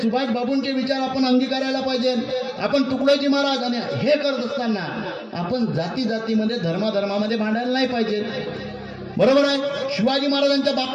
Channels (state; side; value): identical; both; correlation 1.00